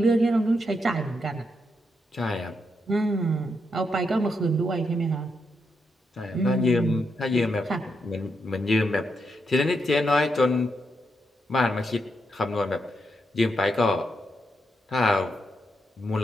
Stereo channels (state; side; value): normal; both; correlation 0.82